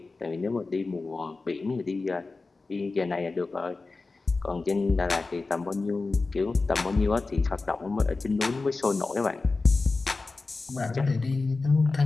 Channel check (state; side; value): quieter; right; 3.7 dB